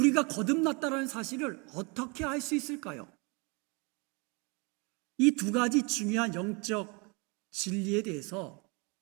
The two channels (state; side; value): quieter; left; 30.8 dB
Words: 거듭났다는 사실을 어떻게 알 수 있을까요? 이 두 가지 중요한 영적 진리에 대해서